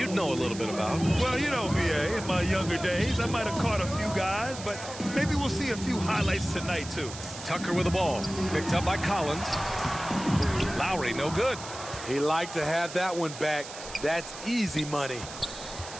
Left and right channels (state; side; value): noise; right; hiss, 12 dB below the sound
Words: know a little bit about. Well, you know, VA, in my younger days, I might have caught a few guys, but maybe we'll see a few highlights tonight, too. Tucker with the ball. Picked up by Collins. Lowry, no good. He liked to have that one back. That's easy money.